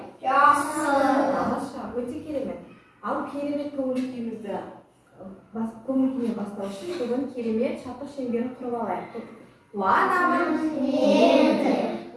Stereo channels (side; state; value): both; identical; correlation 1.00